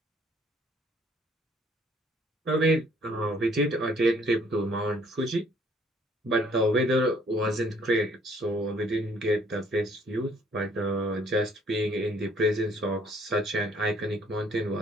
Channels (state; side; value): normal; both; correlation 0.61